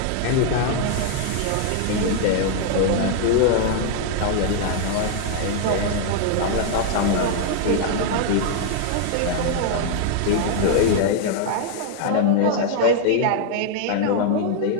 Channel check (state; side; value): different; both; correlation 0.00